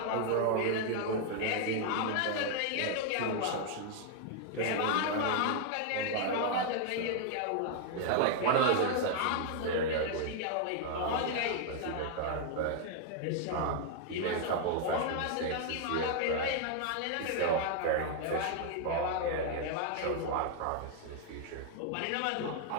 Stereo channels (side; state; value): both; different; correlation 0.00